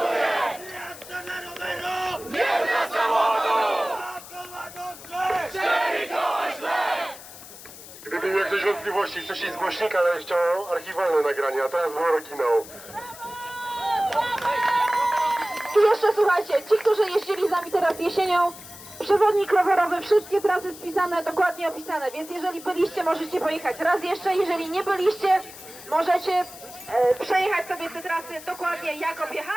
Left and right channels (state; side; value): noise; left; hiss, 16 dB below the sound